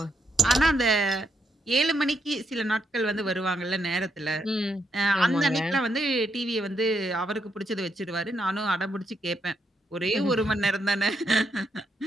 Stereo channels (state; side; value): normal; both; correlation 0.77